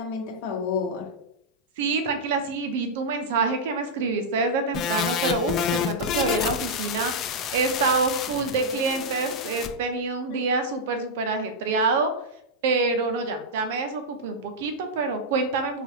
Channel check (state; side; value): normal; both; correlation -0.06